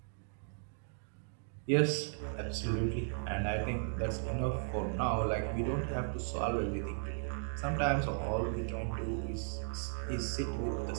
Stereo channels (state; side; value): silent; left; digital silence